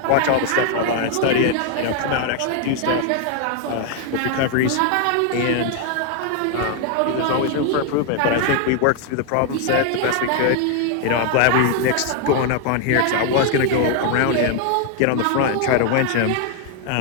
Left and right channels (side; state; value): both; different; correlation 0.00